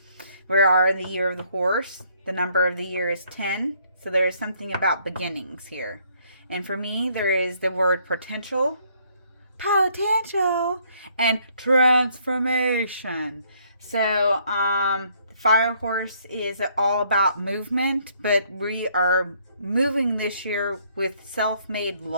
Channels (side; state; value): both; inverted; correlation -0.66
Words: We are in the year of the horse. The number of the year is 10. So there is something about beginnings here. And for me, there is the word potential, and transformation. So the fire horse is all about movement, but we are moving this year with self-made